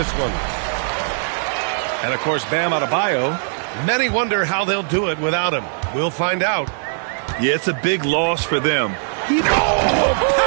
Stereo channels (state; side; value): silent; left; 66 dB below the other